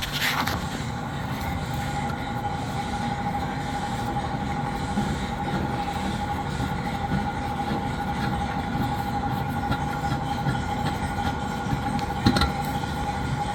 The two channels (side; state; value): both; identical; correlation 1.00